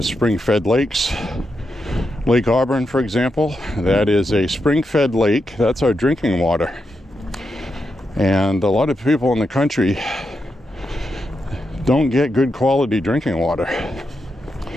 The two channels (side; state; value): both; normal; correlation 0.85